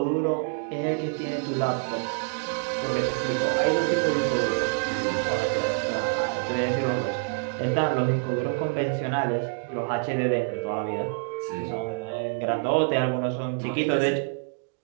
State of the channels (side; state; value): left; silent; 60 dB below the other